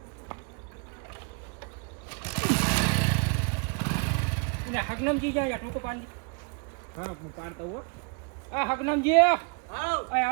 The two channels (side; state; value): left; quieter; 36.2 dB